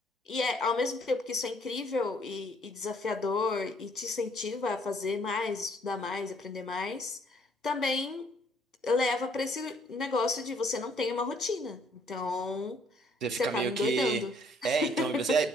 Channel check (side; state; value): both; normal; correlation 0.64